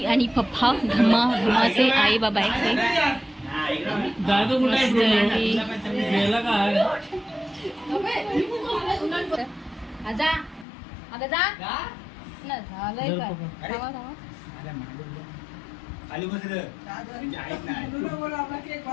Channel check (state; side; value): drops out; right; at 10.7 s